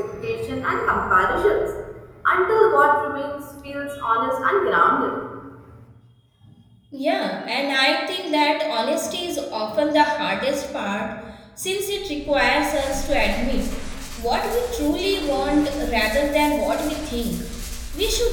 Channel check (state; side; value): identical; both; correlation 1.00